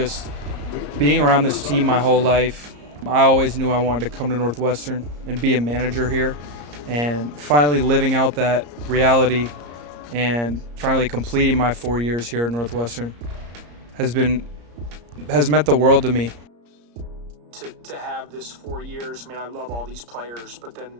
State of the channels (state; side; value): late; left; 34 ms